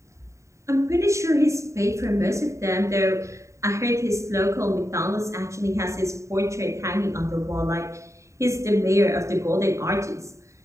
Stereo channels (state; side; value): late; left; 0.14 ms